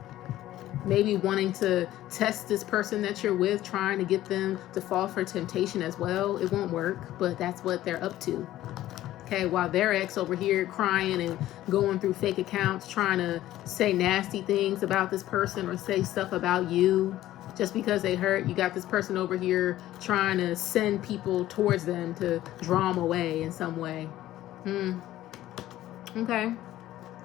Maybe wanting to test this person that you're with, trying to get them to fall for temptation as well. It won't work, but that's what they're up to. Okay, while their ex over here crying and going through fake accounts, trying to say nasty things about this person or say stuff about you just because they hurt, you got this person over here trying to send people towards them to draw them away in some way. Okay.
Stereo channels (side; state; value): right; quieter; 14.3 dB